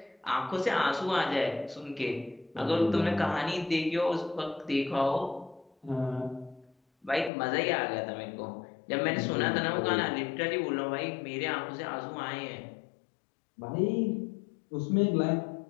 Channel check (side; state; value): right; drops out; at 7.3 s